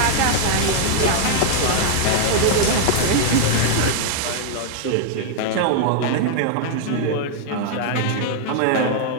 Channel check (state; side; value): different; both; correlation 0.00